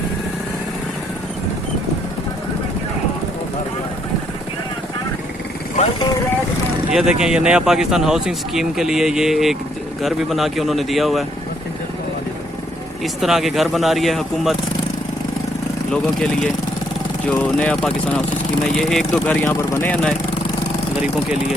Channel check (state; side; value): normal; both; correlation 0.71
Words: ये देखें, ये नया पाकिस्तान हाउसिंग स्कीम के लिए ये एक घर भी बना के उन्होंने दिया हुआ है। इस तरह के घर बना रही है हुकूमत लोगों के लिए, जो नया पाकिस्तान हाउस स्कीम है। ये 1-2 घर यहाँ पर बने हैं नए गरीबों के लिए,